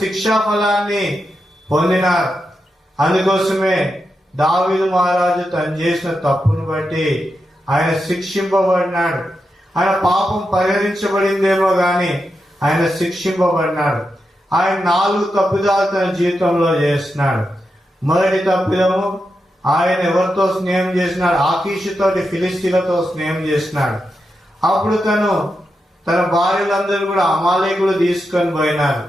శిక్షా ఫలాన్ని పొందినారు. అందుకోసమే దావీదు మహారాజు తను చేసిన తప్పును బట్టి ఆయన శిక్షింపబడినాడు. ఆయన పాపం పరిహరించబడిందేమో గాని ఆయన శిక్షింపబడినాడు. ఆయన 4 తప్పిదాలు తన జీవితంలో చేస్తున్నాడు. మొదటి తప్పిదము, ఆయన ఎవరితో స్నేహం చేసినాడు? ఆకీషుతోటి, ఫిలిస్తీన్లతో స్నేహం చేసినాడు. అప్పుడు తన భార్యలందరూ కూడా అమాలేకులు తీసుకొని పోయినారు.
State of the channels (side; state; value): both; normal; correlation 0.87